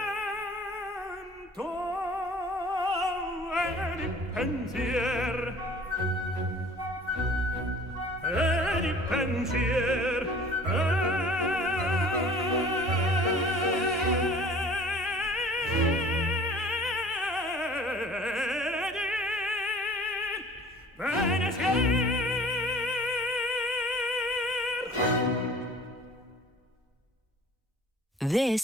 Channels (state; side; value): normal; both; correlation 0.48